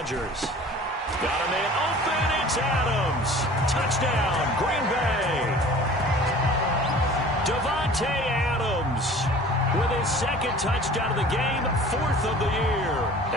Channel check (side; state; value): both; normal; correlation 0.45